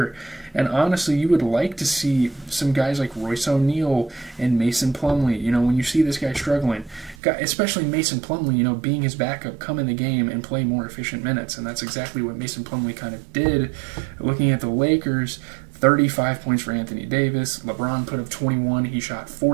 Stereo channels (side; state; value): left; drops out; at 7.2 s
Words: And honestly, you would like to see some guys like Royce O'Neal and Mason Plumlee. When you see this guy struggling, especially Mason Plumlee, being his backup, come in the game and play more efficient minutes. And that's exactly what Mason Plumlee kind of did. Looking at the Lakers, 35 points for Anthony Davis. LeBron put up 21. He shot